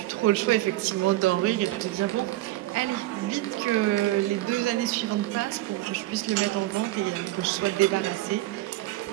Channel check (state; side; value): quieter; left; 17.0 dB